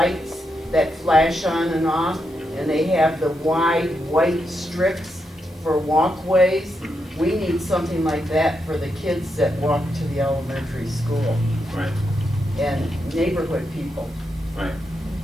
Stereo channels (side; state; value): both; normal; correlation 0.83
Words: that flash on and off, and they have the wide white strips for walkways. We need something like that for the kids that walk to the elementary school Right, and neighborhood people. right.